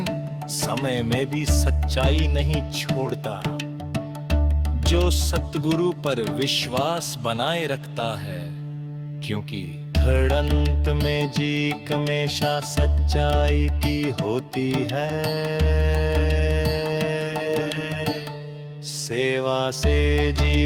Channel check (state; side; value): identical; both; correlation 1.00